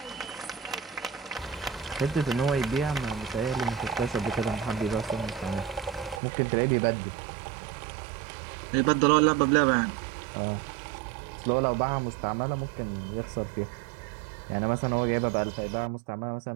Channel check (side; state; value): left; drops out; at 6.2 s